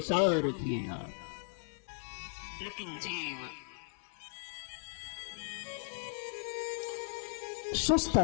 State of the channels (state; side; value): silent; right; 53 dB below the other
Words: रखिए आप। लेकिन जीव सुस्त